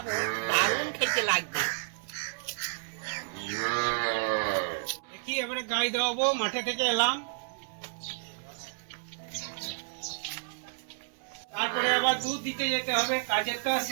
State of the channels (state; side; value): silent; left; 57 dB below the other